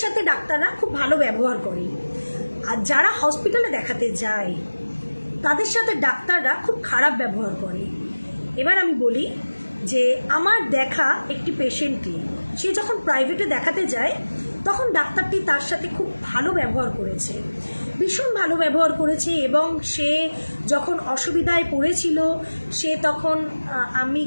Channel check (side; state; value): both; inverted; correlation -1.00